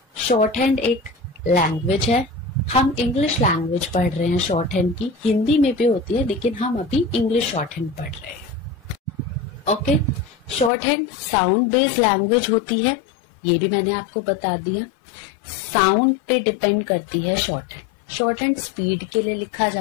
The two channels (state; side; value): drops out; right; at 10.7 s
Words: शॉर्ट हैंड एक लैंग्वेज है। हम इंग्लिश लैंग्वेज पढ़ रहे हैं शॉर्ट हैंड की, हिंदी में भी होती है लेकिन हम अभी इंग्लिश शॉर्ट हैंड पढ़ रहे हैं। Okay, short hand sound based language होती है, ये भी मैंने आपको बता दिया। साउंड पे डिपेंड करती है short hand. Short hand speed के लिए लिखा